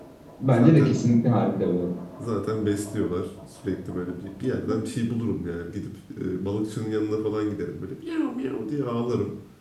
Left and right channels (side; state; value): both; identical; correlation 1.00